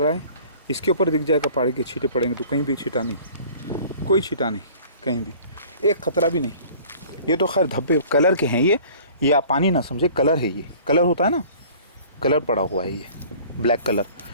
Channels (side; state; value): both; inverted; correlation -0.48